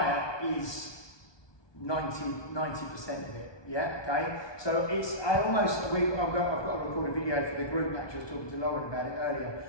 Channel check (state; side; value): late; right; 1.2 ms